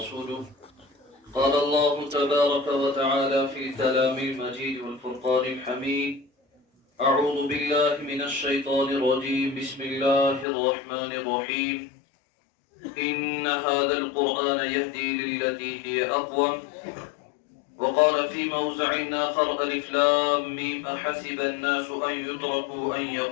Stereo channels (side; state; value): right; drops out; at 10.5 s